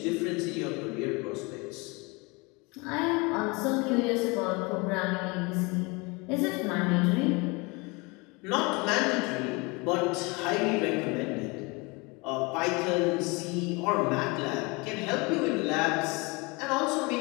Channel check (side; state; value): right; quieter; 27.3 dB